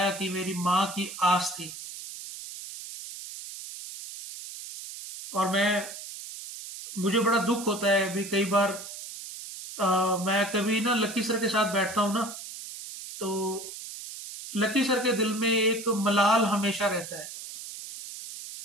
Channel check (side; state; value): right; noise; hiss, 11 dB below the sound